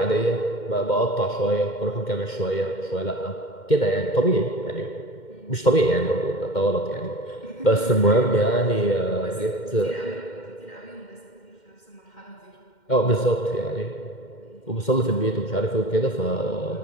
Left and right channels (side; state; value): right; late; 2.1 ms